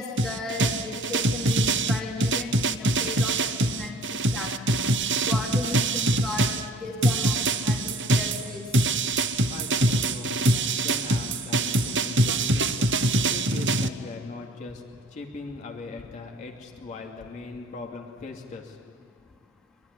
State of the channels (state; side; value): normal; both; correlation 0.53